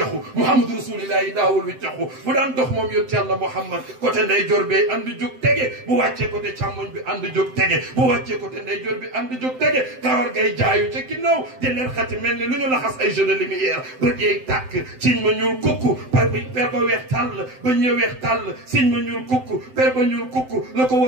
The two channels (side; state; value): left; late; 7.8 ms